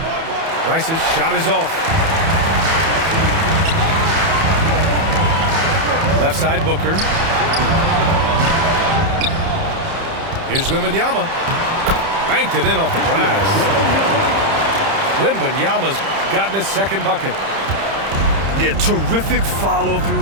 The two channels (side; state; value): left; late; 30 ms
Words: Rice's shot is off. Left side, Booker. Here's Wembanyama. Banked it in off the glass. Wembanyama's gotten his second bucket. Yeah, terrific